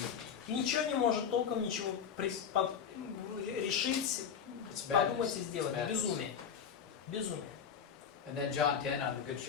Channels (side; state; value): right; quieter; 7.4 dB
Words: Ничего не может толком ничего решить, It's подумать madness. и сделать. It's madness. Безумие. Безумие. And then John 10, I'm the good